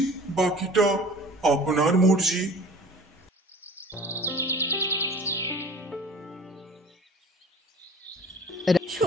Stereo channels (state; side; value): normal; both; correlation 0.44